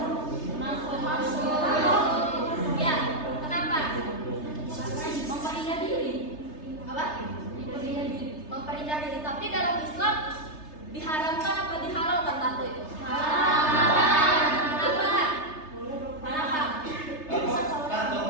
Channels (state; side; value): late; right; 3.3 ms